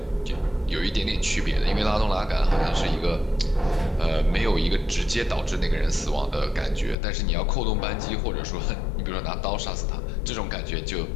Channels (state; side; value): drops out; right; at 7.0 s